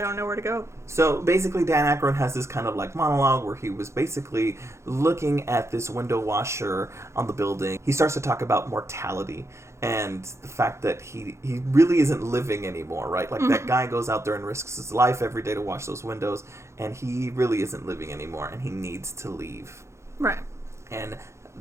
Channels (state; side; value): late; left; 0.13 ms